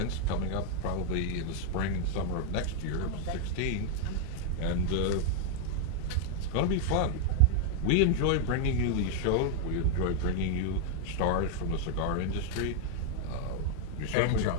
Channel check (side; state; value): both; different; correlation 0.00